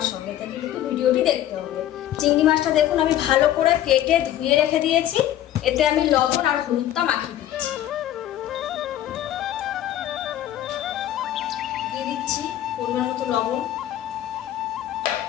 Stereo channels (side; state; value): right; quieter; 12.4 dB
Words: সঙ্গে থেকে কিন্তু ভিডিওটি দেখতে হবে। চিংড়ি মাছটা দেখুন আমি ভালো করে কেটে ধুয়ে রেখে দিয়েছি। এতে আমি লবণ আর হলুদটা মাখিয়ে দিচ্ছি। দিয়ে দিচ্ছি পরিমাণ মতো লবণ,